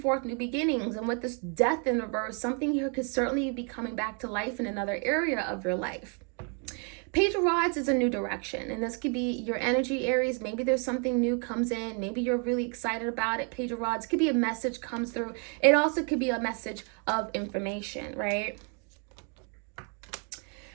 new beginnings. And with this Death in reverse, something here could certainly be coming back to life in another area of your life. Page of Rods is a new direction, and this could be your energy, Aries. Maybe there's something new comes in. Maybe you're really excited about it. Page of Rods could be a message comes through. It also could be a message of information, right?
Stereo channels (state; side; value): quieter; left; 38.8 dB